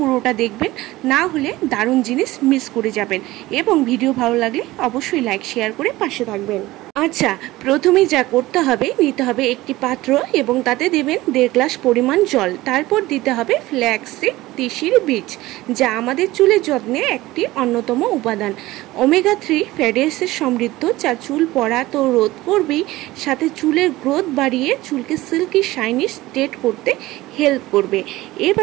দেখবেন, না হলে দারুণ জিনিস মিস করে যাবেন। এবং ভিডিও ভালো লাগলে অবশ্যই লাইক, শেয়ার করে পাশে থাকবেন। আচ্ছা, প্রথমে যা করতে হবে, নিতে হবে একটি পাত্র এবং তাতে দেবেন 1.5 গ্লাস পরিমাণ জল। তারপর দিতে হবে ফ্ল্যাক্সিড, তিসির বীজ, যা আমাদের চুলের যত্নে একটি অন্যতম উপাদান। ওমেগা 3 ফ্যাটি অ্যাসিড সমৃদ্ধ, যা চুল পড়া তো রোধ করবেই, সাথে চুলের গ্রোথ বাড়িয়ে চুলকে সিল্কি শাইনি স্ট্রেট করতে হেল্প করবে।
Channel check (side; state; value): left; quieter; 18.1 dB